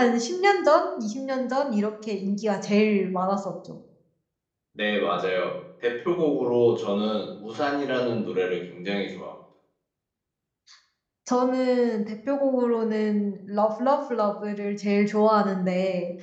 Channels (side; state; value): both; identical; correlation 1.00